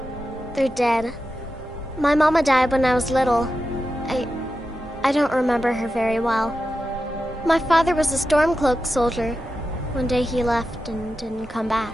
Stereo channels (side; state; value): both; normal; correlation 0.91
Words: They're dead. My mama died when I was little. I don't remember her very well. My father was a Stormcloak soldier. One day he left and didn't come back.